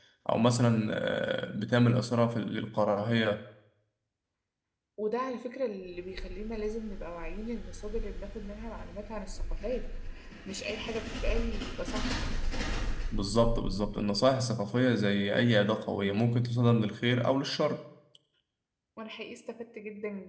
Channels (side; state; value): both; identical; correlation 1.00